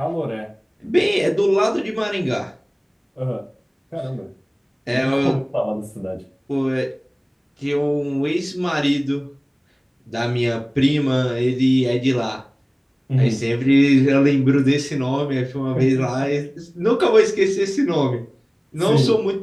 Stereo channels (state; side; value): identical; both; correlation 1.00